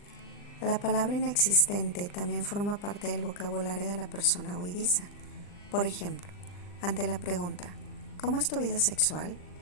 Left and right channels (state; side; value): late; right; 39 ms